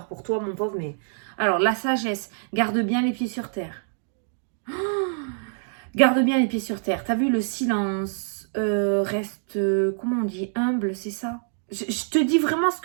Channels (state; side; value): silent; left; 60 dB below the other